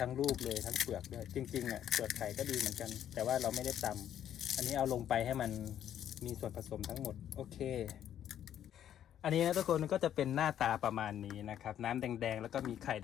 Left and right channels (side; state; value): right; quieter; 10.4 dB